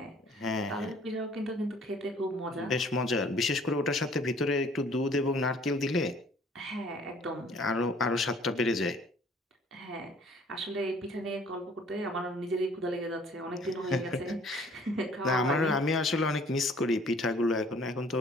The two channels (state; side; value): normal; both; correlation 0.55